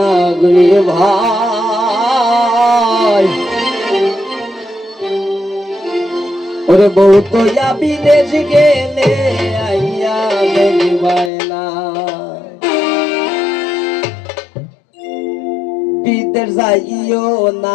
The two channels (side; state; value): right; drops out; at 11.3 s